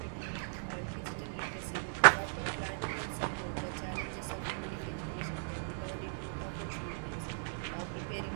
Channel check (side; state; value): left; silent; 53 dB below the other